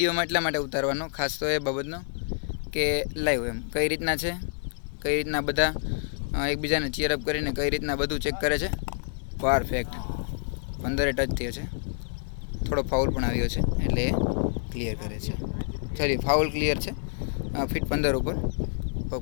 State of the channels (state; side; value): silent; right; digital silence